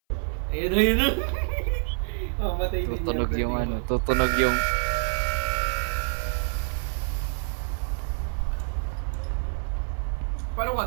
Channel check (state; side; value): silent; left; 58 dB below the other